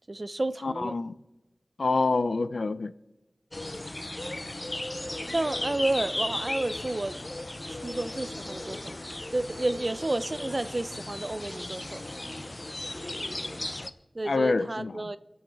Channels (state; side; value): normal; both; correlation 0.96